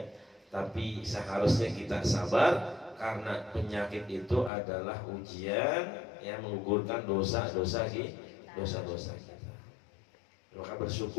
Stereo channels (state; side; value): drops out; right; at 4.5 s